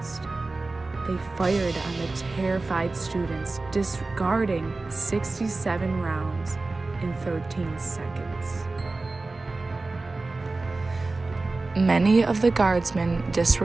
They fired on the terrified students, discarding 67 rounds in 13 seconds. Many of the guardsmen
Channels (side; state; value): left; quieter; 3.4 dB